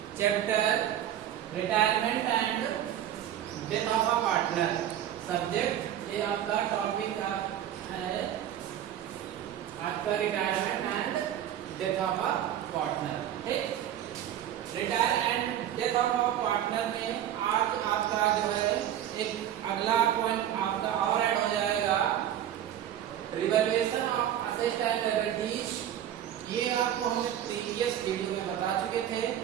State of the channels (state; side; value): quieter; left; 11.0 dB